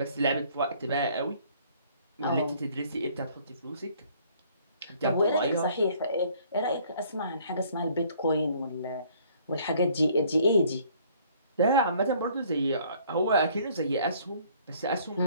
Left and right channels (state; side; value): inverted; both; correlation -0.59